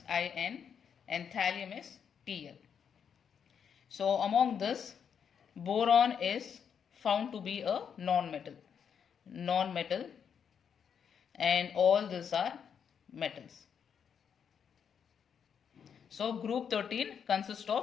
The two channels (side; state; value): right; quieter; 7.4 dB